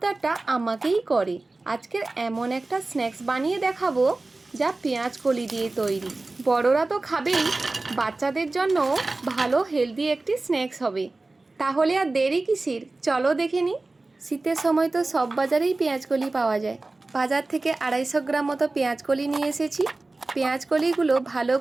আমাকেই করে। আজকের এমন একটা স্ন্যাক্স বানিয়ে দেখাবো যা পেঁয়াজ কলি দিয়ে তৈরি। বড়রা তো খাবেই, বাচ্চাদের জন্য ভালো হেলদি একটি স্ন্যাক্স হবে। তাহলে আর দেরি কিসের, চলো দেখে নিই। শীতের সময় তো সব বাজারেই পেঁয়াজ কলি পাওয়া যায়। বাজার থেকে 250 গ্রাম মতো পেঁয়াজ কলি নিয়ে এসেছি। পেঁয়াজ কলিগুলো ভালো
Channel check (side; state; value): left; quieter; 3.2 dB